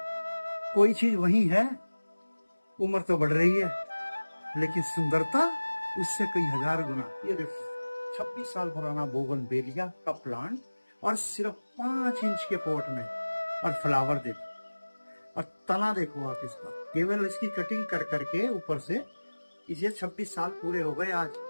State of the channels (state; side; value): inverted; both; correlation -1.00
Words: कोई चीज वही है, उम्र तो बढ़ रही है लेकिन सुंदरता उससे कई हजार गुना। ये देखो 26 साल पुराना बोगनवेलिया का प्लांट और सिर्फ 5 इंच के पॉट में, और फ्लावर देखो और तना देखो आप इसका, केवल इसकी कटिंग कर करके ऊपर से इसे 26 साल पूरे हो गए। आज